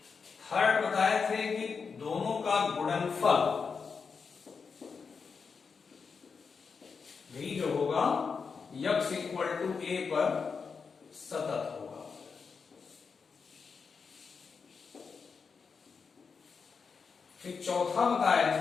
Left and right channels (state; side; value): quieter; right; 5.4 dB